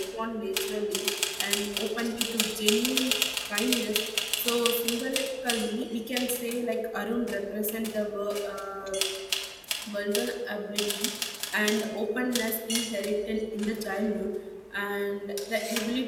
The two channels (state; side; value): identical; both; correlation 1.00